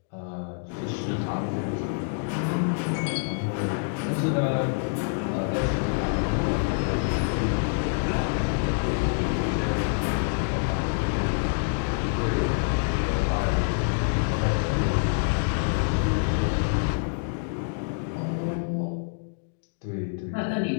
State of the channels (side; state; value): right; silent; digital silence